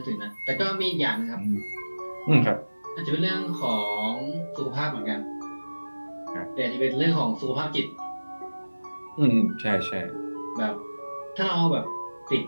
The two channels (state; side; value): inverted; both; correlation -1.00